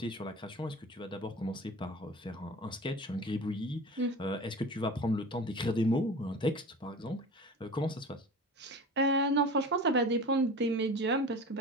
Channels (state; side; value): normal; both; correlation 0.36